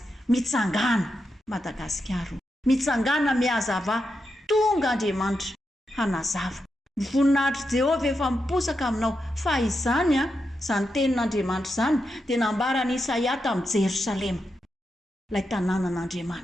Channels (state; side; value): normal; both; correlation 0.86